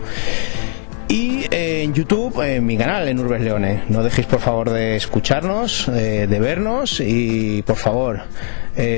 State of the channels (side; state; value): right; silent; 58 dB below the other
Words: y en YouTube, en mi canal, en Urbes Leone. No dejéis por favor de escucharnos, de vernos, y por favor